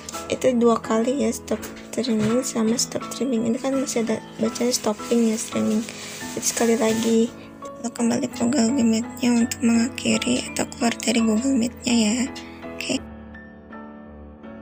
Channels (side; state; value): both; identical; correlation 1.00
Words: itu 2 kali ya, stop streaming sama stop streaming. Ini kan masih ada bacanya stopping ya, streaming. Jadi sekali lagi kita kembali ke Google Meet-nya untuk mengakhiri atau keluar dari Google Meet-nya ya.